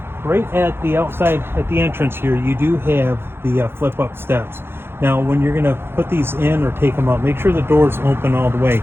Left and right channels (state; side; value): late; left; 0.11 ms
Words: Right at the outside, at the entrance here, you do have the flip-up steps. Now, when you're going to put these in or take them out, make sure the door's open all the way.